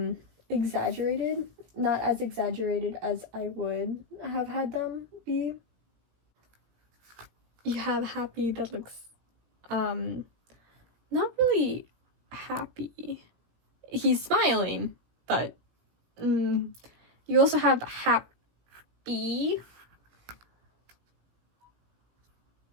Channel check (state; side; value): late; left; 17 ms